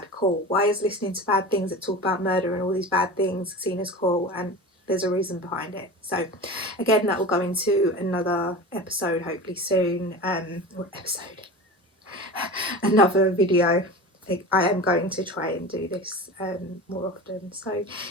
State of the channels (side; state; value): both; normal; correlation 0.32